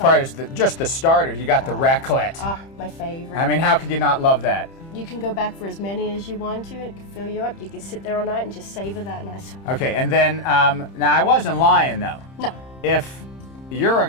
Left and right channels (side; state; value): right; late; 30 ms